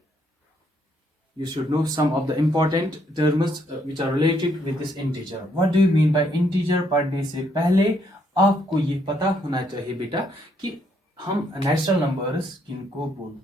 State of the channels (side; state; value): both; normal; correlation 0.72